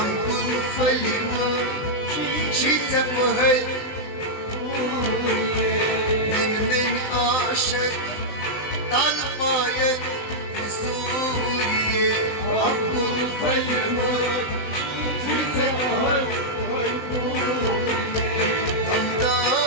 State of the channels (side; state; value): right; late; 19 ms